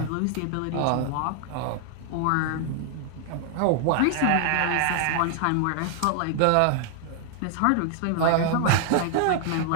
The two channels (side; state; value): both; different; correlation 0.00